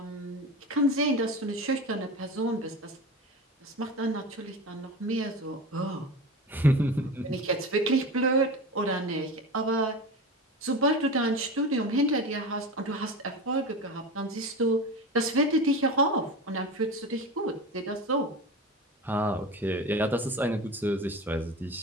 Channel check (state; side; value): normal; both; correlation 0.28